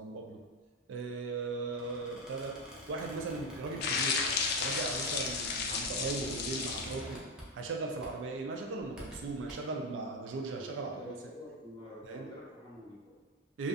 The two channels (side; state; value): both; normal; correlation 0.10